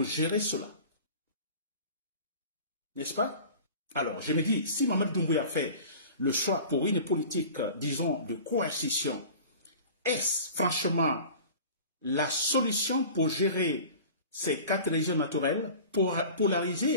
gérer cela. N'est-ce pas? Alors, je me dis, si Mamadi Doumbouya fait le choix pour une politique, disons, de coercition, est-ce franchement la solution pour gérer ces 4 régions naturelles,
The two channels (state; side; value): inverted; both; correlation -0.40